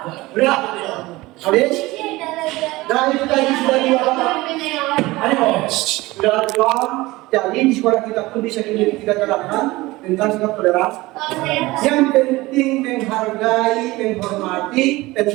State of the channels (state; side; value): quieter; left; 20.1 dB